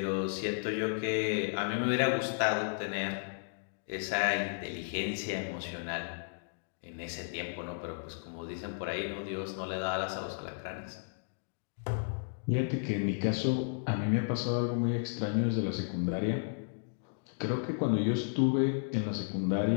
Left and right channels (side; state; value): right; silent; digital silence